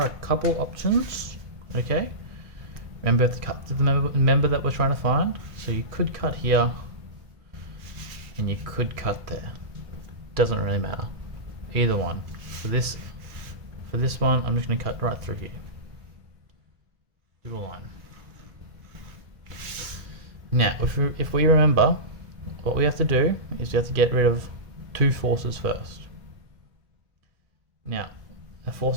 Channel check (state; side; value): late; left; 2.0 ms